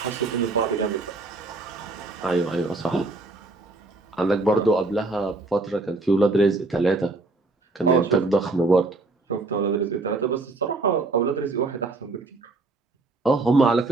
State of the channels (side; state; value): left; quieter; 3.3 dB